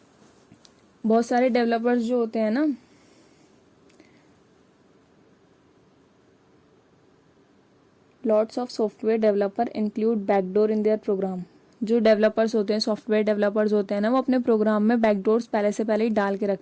बहुत सारे डेवलपर्स जो होते हैं ना, lots of software developer include backdoor in their program। जो developers होते हैं, software developers होते हैं ना, वो अपने प्रोग्राम में बैकडोर्स पहले से पहले ही डाल के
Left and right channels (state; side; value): identical; both; correlation 1.00